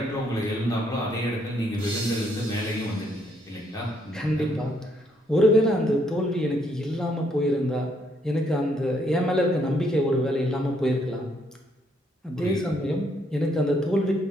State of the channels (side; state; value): both; normal; correlation 0.71